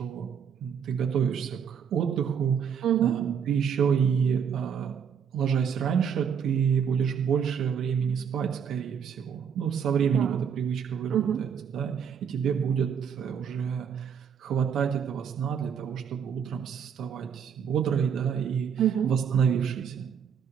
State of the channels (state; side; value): quieter; left; 7.4 dB